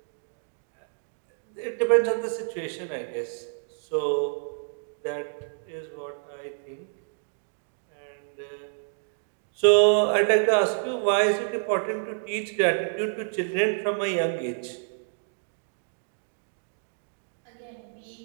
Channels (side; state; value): left; silent; digital silence